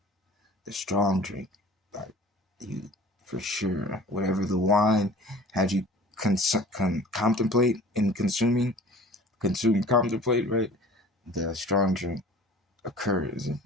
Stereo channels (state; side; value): normal; both; correlation 0.45